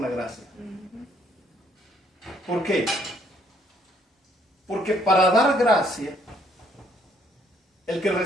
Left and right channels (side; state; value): both; normal; correlation 0.67